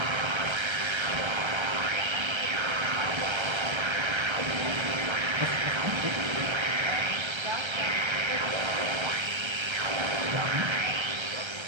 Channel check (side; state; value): left; late; 1.3 ms